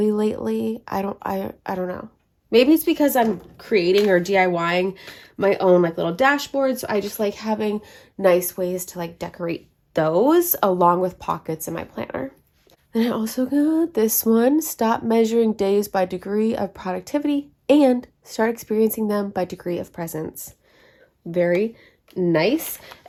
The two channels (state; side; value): identical; both; correlation 1.00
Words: lately. I don't know. Maybe it's because I'm creating or DIYing my own like little dashboard, so I just like having nice ways to like decorate those along with pockets in my planner. Then I also got this one, stop measuring days by degree of productivity and start experiencing them by degree of presence. Very nice.